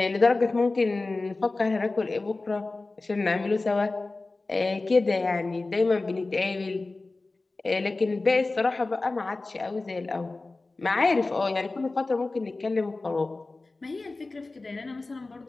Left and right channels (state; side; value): quieter; right; 3.3 dB